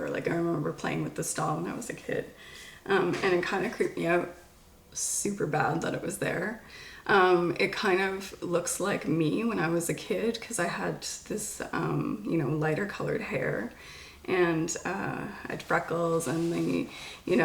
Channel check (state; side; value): identical; both; correlation 1.00